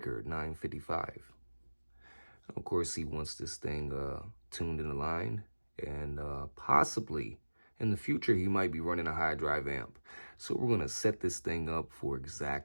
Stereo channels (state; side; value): inverted; both; correlation -1.00